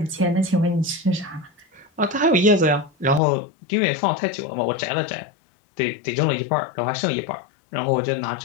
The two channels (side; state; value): right; drops out; at 3.2 s